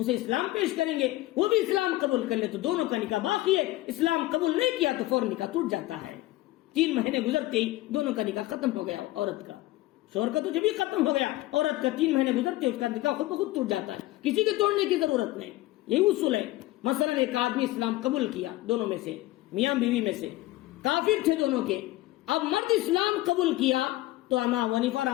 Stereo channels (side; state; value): right; quieter; 17.7 dB